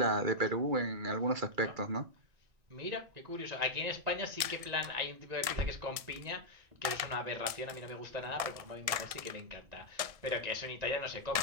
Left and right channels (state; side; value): late; left; 1.7 ms